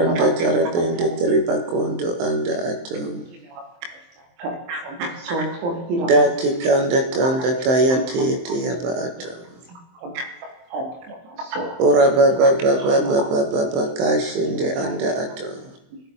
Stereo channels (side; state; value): left; late; 23 ms